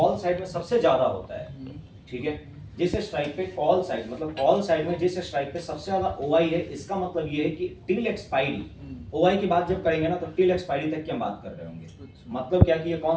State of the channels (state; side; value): identical; both; correlation 1.00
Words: साइड में सबसे ज्यादा होता है, ठीक है, जिस स्ट्राइक पे कॉल साइड, मतलब कॉल साइड में जिस स्ट्राइक पे सबसे ज्यादा ओआई है, इसका मतलब ये है कि टिल एक्सपायरी, ओआई की बात जब करेंगे ना, तो टिल एक्सपायरी तक की हम बात कर रहे होंगे। मतलब क्या कि ये